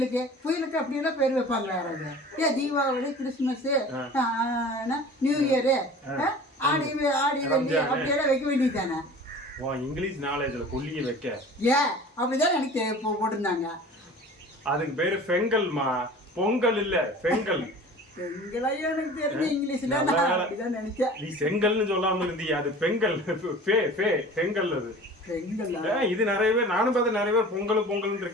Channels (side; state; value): both; normal; correlation 0.41